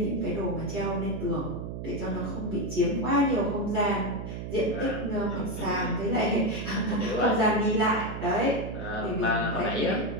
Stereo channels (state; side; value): noise; right; hum, 7 dB below the sound